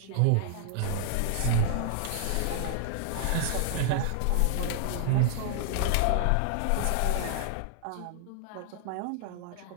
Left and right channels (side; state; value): both; different; correlation -0.01